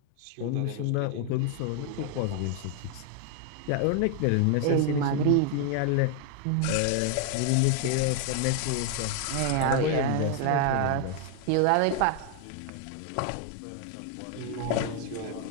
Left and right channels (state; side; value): different; both; correlation 0.00